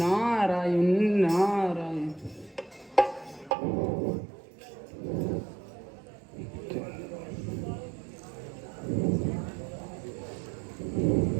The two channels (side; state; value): left; drops out; at 3.6 s